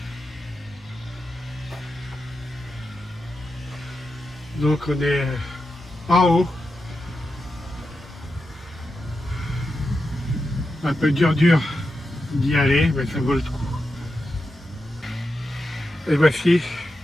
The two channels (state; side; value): normal; both; correlation 0.89